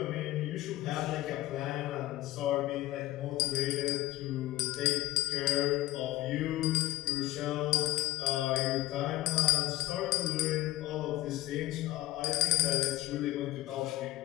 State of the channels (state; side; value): quieter; right; 16.3 dB